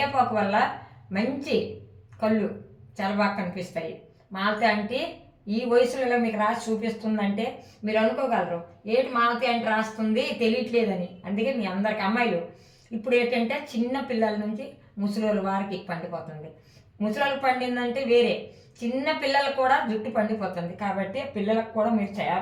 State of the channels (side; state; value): both; identical; correlation 1.00